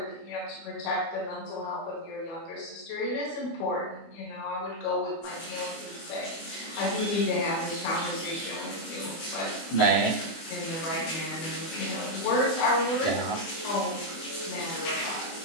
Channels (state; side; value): late; right; 24 ms